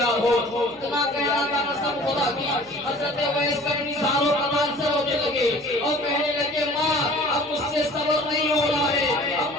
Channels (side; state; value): left; noise; hum, 29 dB below the sound